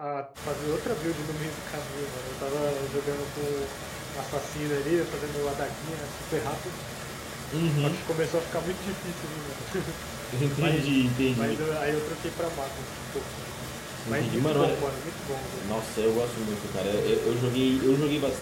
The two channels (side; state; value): both; identical; correlation 1.00